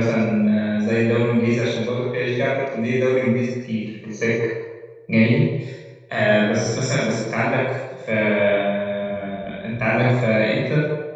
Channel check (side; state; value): both; identical; correlation 1.00